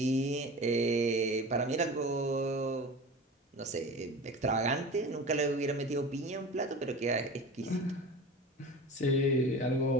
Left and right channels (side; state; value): both; normal; correlation 0.34